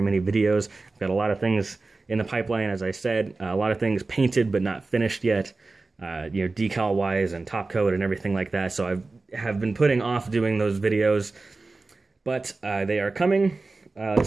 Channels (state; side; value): quieter; left; 3.6 dB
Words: many videos. I've got a lot of things in the pipeline, as I said. A lot of things painted but not finished yet, decal-wise and top coat and everything like that. So I have been putting off doing those videos, but they are coming.